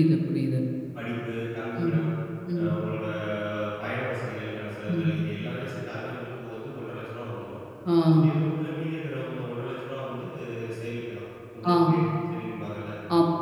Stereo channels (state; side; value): identical; both; correlation 1.00